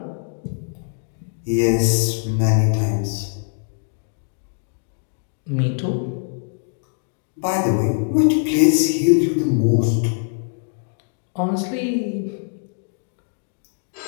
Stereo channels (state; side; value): silent; right; digital silence